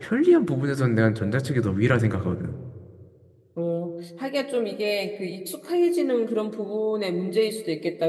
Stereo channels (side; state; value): both; identical; correlation 1.00